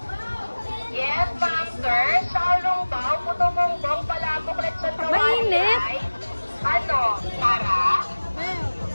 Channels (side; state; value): both; inverted; correlation -1.00